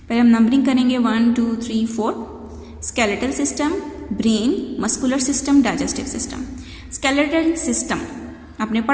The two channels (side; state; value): both; identical; correlation 1.00